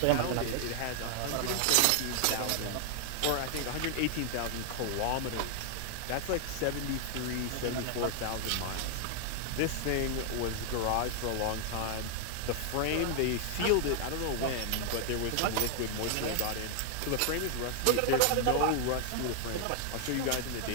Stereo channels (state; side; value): different; both; correlation 0.00